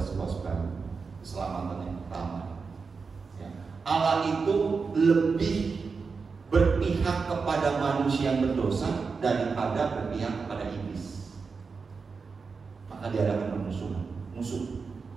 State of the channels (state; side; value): quieter; left; 4.9 dB